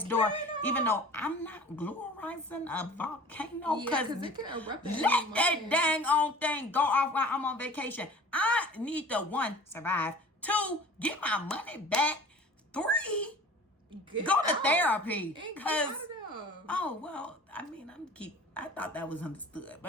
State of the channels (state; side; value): normal; both; correlation 0.43